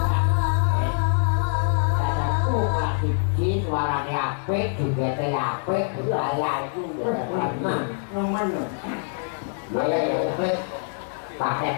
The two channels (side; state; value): right; silent; digital silence